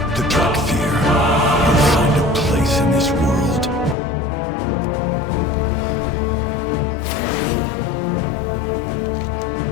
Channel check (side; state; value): right; drops out; at 4.0 s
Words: The Dragonflight will find a place in this world.